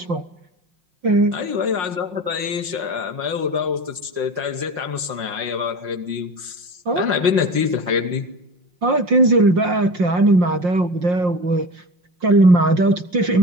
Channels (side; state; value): left; late; 5.5 ms